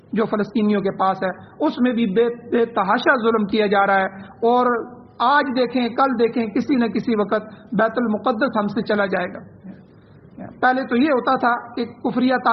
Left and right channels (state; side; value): identical; both; correlation 1.00